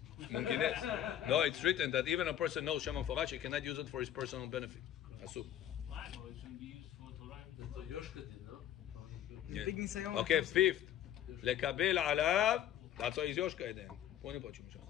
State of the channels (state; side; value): quieter; right; 11.1 dB